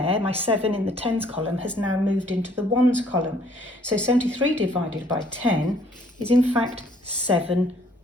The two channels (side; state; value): both; normal; correlation 0.61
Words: my 7 in the tens column, has now moved into the ones column. So 73 divided by 10 is in fact